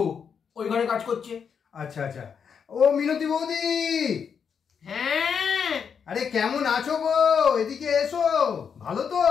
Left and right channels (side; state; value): right; quieter; 6.8 dB